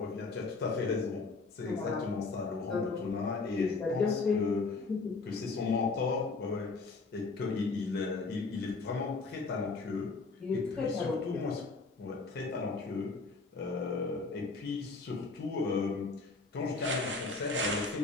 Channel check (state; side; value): quieter; right; 3.9 dB